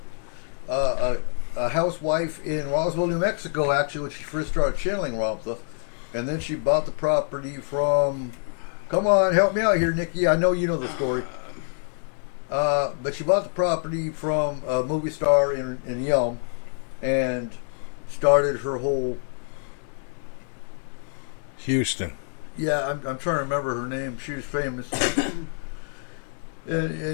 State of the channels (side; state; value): right; silent; digital silence